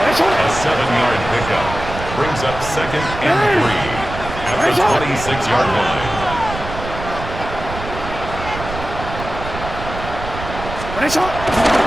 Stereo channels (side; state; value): right; noise; rumble, 9 dB below the sound